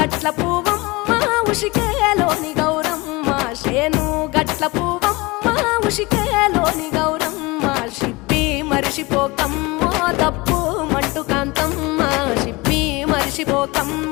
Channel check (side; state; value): right; quieter; 23.7 dB